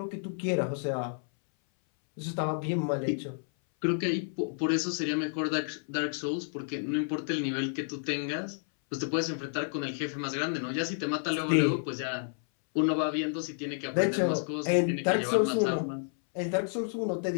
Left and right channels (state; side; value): silent; right; 58 dB below the other